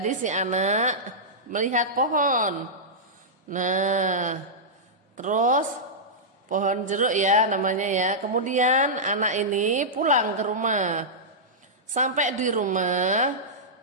si anak melihat pohon. Nah, terus pohon jeruk ya namanya ya. Kemudian anak ini pulang ke rumah. Sampai di rumah,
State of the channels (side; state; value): both; normal; correlation -0.12